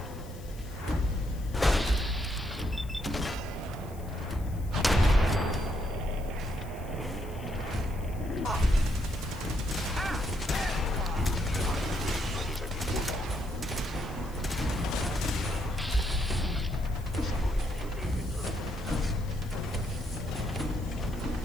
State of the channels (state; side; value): noise; left; hiss, 22 dB below the sound